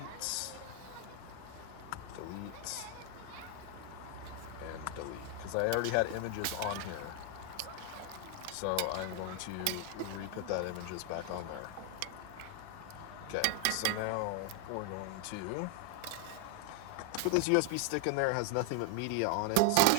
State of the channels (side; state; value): both; different; correlation 0.00